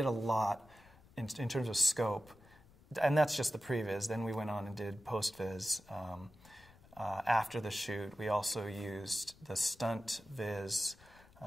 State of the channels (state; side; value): noise; left; rumble, 25 dB below the sound